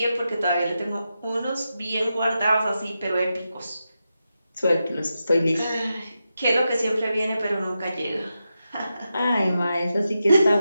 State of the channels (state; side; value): inverted; both; correlation -0.89